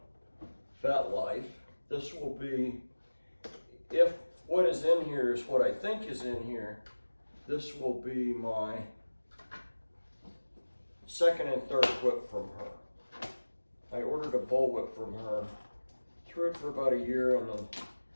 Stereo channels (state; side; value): inverted; both; correlation -1.00